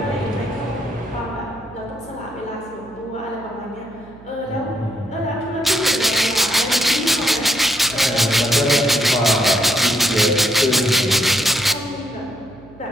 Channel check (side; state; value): right; noise; hum, 22 dB below the sound